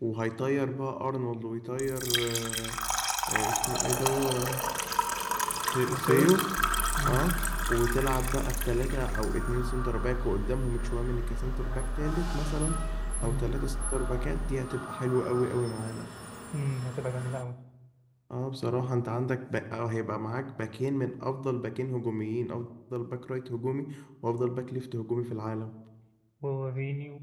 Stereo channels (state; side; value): identical; both; correlation 1.00